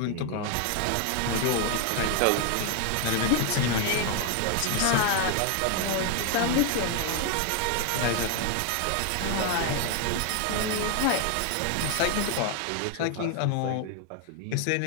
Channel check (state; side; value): different; both; correlation 0.00